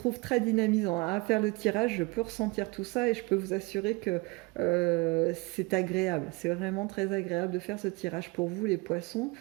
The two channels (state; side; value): quieter; left; 25.7 dB